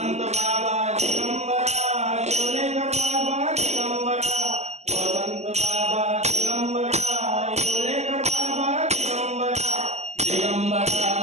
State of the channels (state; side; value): late; left; 0.33 ms